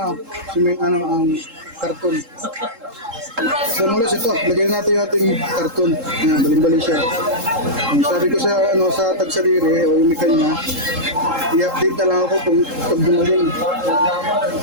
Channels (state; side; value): late; left; 3.7 ms